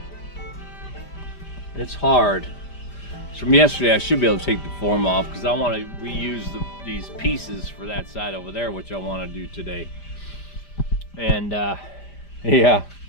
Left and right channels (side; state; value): right; late; 5.0 ms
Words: it's hard. So from yesterday, I should be able to take the form off because I want to reuse these pieces for that side over there, which I want to do today. And yeah,